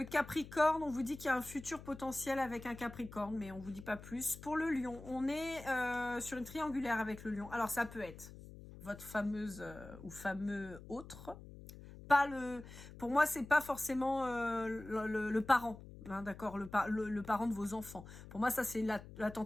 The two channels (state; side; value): noise; left; hum, 15 dB below the sound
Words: Capricorne, on vous dit qu'il y a un futur potentiel avec un Capricorne, mais on vous dit pas plus. Pour le Lion, on est sur une triangulaire avec le Lion. Alors ça peut être votre fameuse ou fameux autre. Pas le, pour moi, c'est pas forcément le parent, hein, d'accord, le parent de vos enfants. Pour moi, ça c'est la